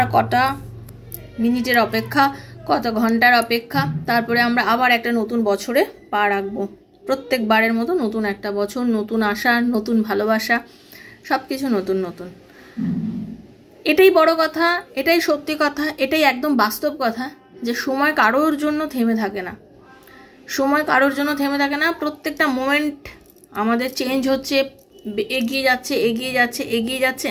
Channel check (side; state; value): both; identical; correlation 1.00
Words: কটা মিনিটের অপেক্ষা, কত ঘন্টার অপেক্ষা, তারপরে আমরা আবার একটা নতুন বছরে পা রাখবো। প্রত্যেকবারের মতো নতুন একটা বছর, নতুন আশা, নতুন ভালোবাসা, সব কিছু নতুন নতুন। এটাই বড় কথা, এটাই সত্যি কথা, এটাই একদম বাস্তব কথা যে সময় কারোর জন্য থেমে থাকে না। সময় কারোর জন্য থেমে থাকে না। প্রত্যেকটা মোমেন্ট আমাদের চেঞ্জ হচ্ছে, এগিয়ে যাচ্ছে এগিয়ে যাচ্ছে এগিয়ে যাচ্ছে